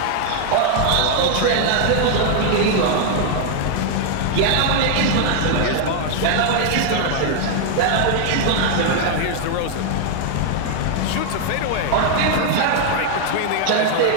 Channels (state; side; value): different; both; correlation 0.00